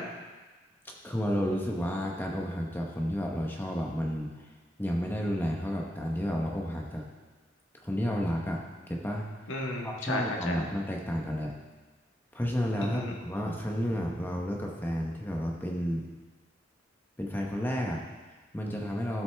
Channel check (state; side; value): normal; both; correlation 0.86